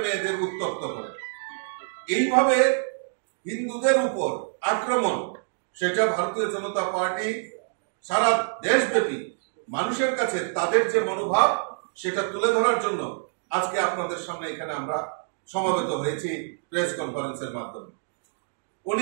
মেয়েদের উত্ত্যক্ত করে এইভাবে হিন্দুদের উপর আক্রমণ সেটা ভারতীয় জনতা পার্টি সারা দেশব্যাপী মানুষের কাছে তাদের যে মনোভাব সেটা তুলে ধরার জন্য আজকে আপনাদের সামনে এখানে আমরা সমবেত হয়েছি প্রেস কনফারেন্সের মাধ্যমে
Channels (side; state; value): left; silent; digital silence